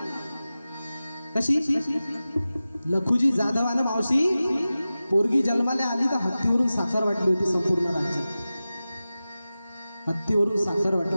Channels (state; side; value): inverted; both; correlation -0.95